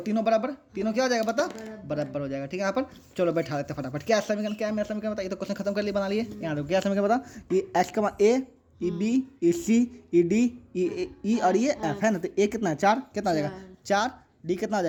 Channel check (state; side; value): identical; both; correlation 1.00